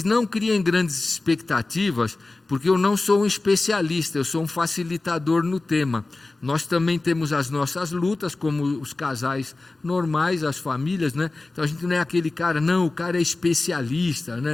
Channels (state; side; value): quieter; right; 3.2 dB